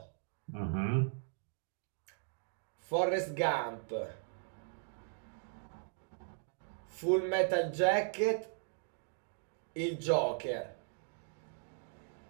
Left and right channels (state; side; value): silent; left; 52 dB below the other